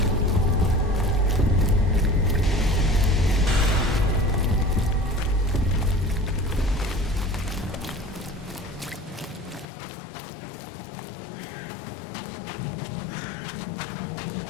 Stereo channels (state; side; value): drops out; right; at 9.7 s